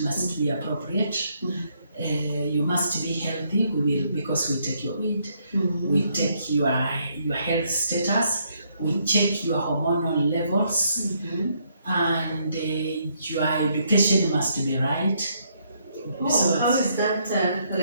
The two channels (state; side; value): inverted; both; correlation -0.72